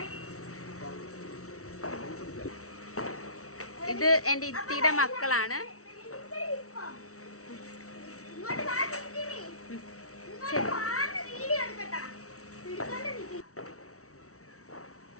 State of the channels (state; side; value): late; right; 0.64 ms